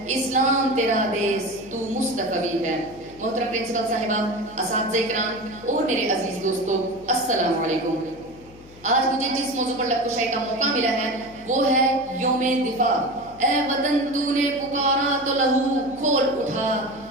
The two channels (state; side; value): noise; left; hum, 23 dB below the sound